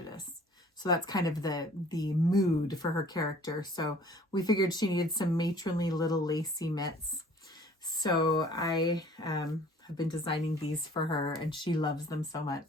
So that's kind of the mood for her character. So we figured she needed some matronly little lacy mitts. So I have been designing these for her, and she loves them so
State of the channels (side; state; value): both; normal; correlation 0.52